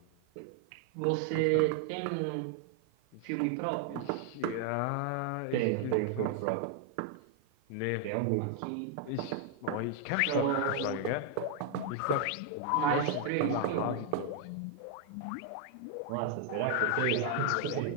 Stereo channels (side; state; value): both; different; correlation 0.00